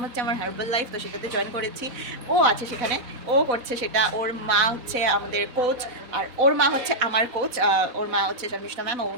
হচ্ছে আমার হার্বাল লাইফ, তো সেটাতে জয়েন করেছি। ও আছে সেখানে, ও করছে সেটা। ওর মা হচ্ছে আমাদের কোচ, আর ওর মা হচ্ছে আমার কোচ। ওর মা হচ্ছে শর্মিষ্ঠা ম্যাম,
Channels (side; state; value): left; late; 4.0 ms